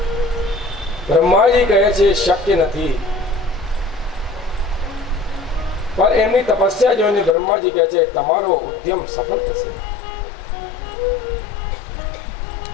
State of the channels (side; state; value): right; drops out; at 7.4 s